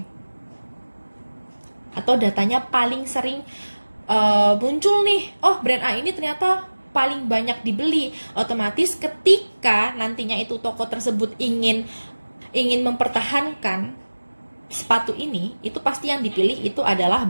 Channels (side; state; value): both; inverted; correlation -1.00